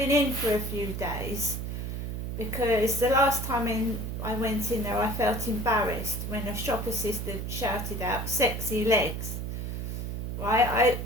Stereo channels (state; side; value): noise; right; hum, 4 dB below the sound